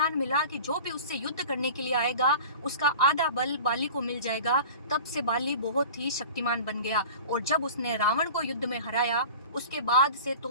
मिला कि जो भी उससे युद्ध करने के लिए आएगा उसका आधा बल बाली को मिल जाएगा, तब से बाली बहुत ही शक्तिमान बन गया। और जब उसने रावण को युद्ध में हराया, उसके बाद से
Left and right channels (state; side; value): inverted; both; correlation -0.38